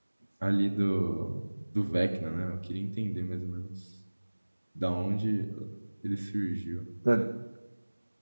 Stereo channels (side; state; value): both; inverted; correlation -1.00